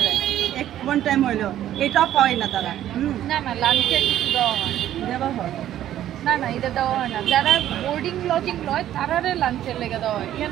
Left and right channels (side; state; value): left; quieter; 12.1 dB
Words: ওয়ান টাইম হইলেও এটাও পায় না তারা। না লাঞ্চের কিছু দেওয়া হয় না, এটা দেওয়া হয় না। যারা বোর্ডিং লজিং লয় তারারে লাঞ্চের লেগে দেওয়া হয়,